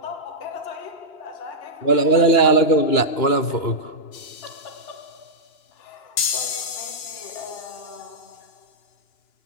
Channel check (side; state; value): right; late; 2.9 ms